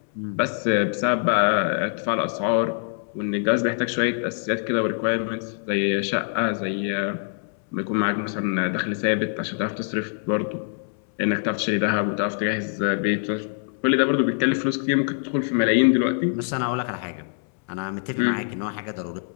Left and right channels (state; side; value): silent; right; 62 dB below the other